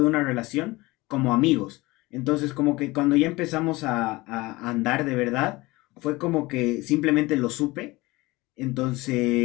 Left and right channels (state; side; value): quieter; right; 21.4 dB